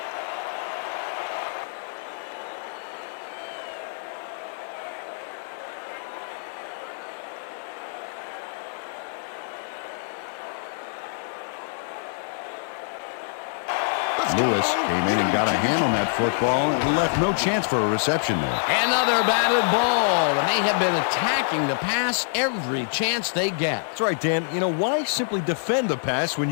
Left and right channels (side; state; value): right; silent; digital silence